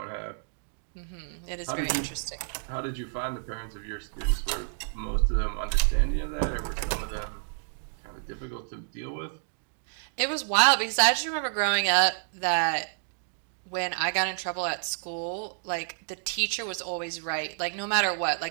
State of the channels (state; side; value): silent; left; digital silence